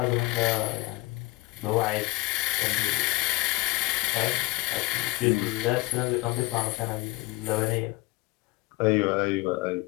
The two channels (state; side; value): quieter; right; 21.5 dB